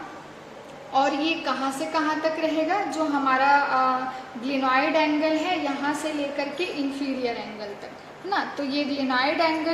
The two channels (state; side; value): identical; both; correlation 1.00